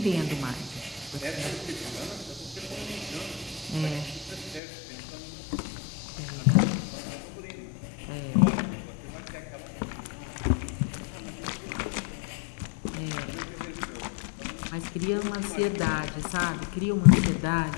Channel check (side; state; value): right; drops out; at 4.6 s